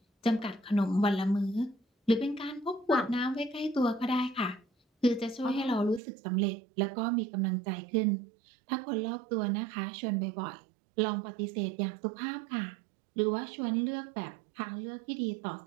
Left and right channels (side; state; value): left; drops out; at 6.0 s